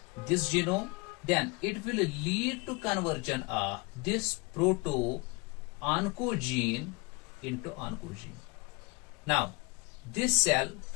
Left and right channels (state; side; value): quieter; right; 27.4 dB